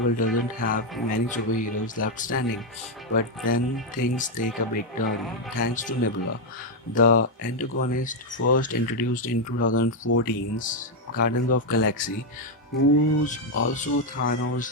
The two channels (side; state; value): both; normal; correlation 0.02